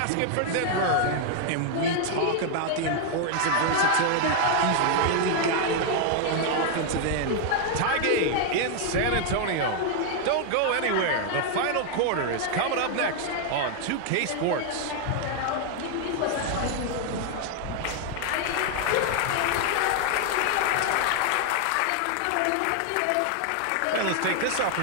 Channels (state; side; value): different; both; correlation 0.00